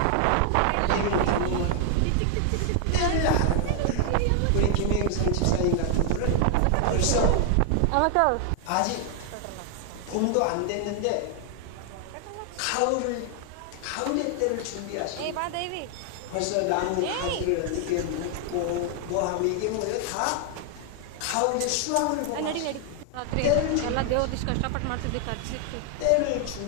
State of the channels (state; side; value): different; both; correlation 0.00